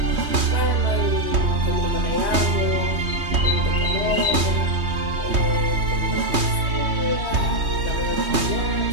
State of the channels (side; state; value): left; late; 3.2 ms